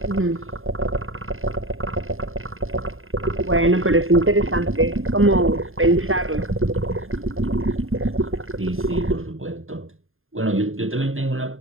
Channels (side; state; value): left; late; 0.60 ms